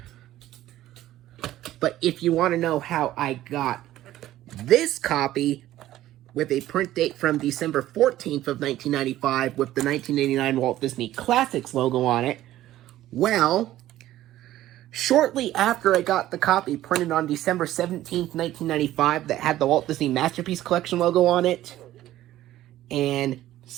But if you want to know how I got this copy with a print date from December 14th of 1995 with the 1989 Walt Disney Classics logo on it, well, Shortly after I got the copy printed on December 17th, 1995, that had the Walt Disney Masterpiece Collection logo on it, and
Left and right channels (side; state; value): left; quieter; 14.2 dB